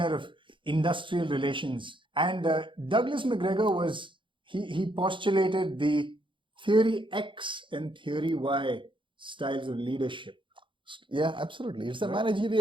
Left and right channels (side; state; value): left; late; 0.24 ms